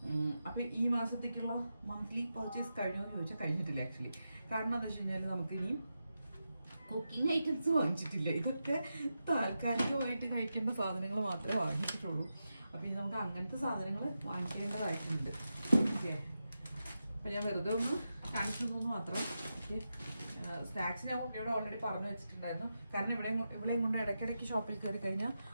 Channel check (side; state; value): both; inverted; correlation -0.89